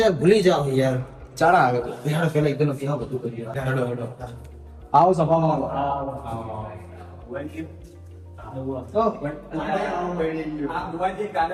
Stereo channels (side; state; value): both; identical; correlation 1.00